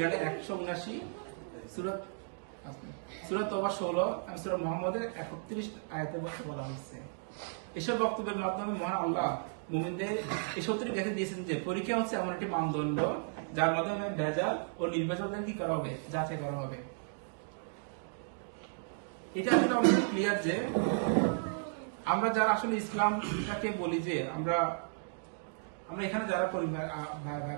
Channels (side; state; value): left; silent; digital silence